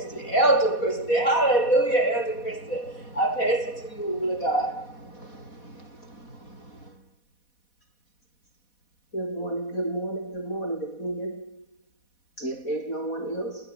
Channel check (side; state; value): right; late; 4.1 ms